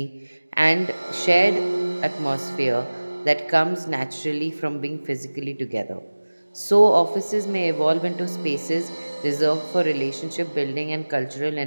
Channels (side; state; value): both; inverted; correlation -1.00